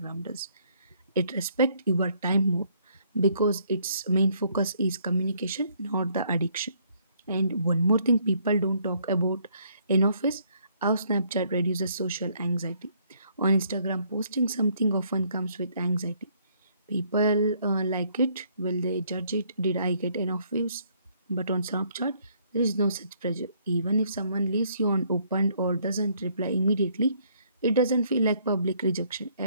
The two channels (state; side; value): inverted; both; correlation -0.67